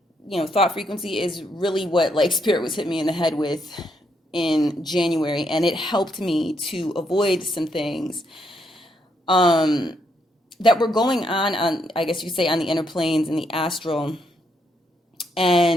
Thought frequency is really what Spirit was hitting me in the head with in January, and it helped me to avoid some things that were going on, I guess you could say, on the inner planes and the astral.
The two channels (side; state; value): both; normal; correlation 0.76